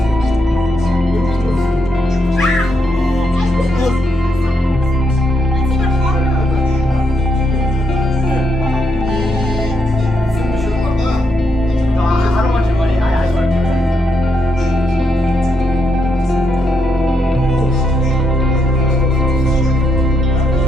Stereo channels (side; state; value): both; normal; correlation 0.79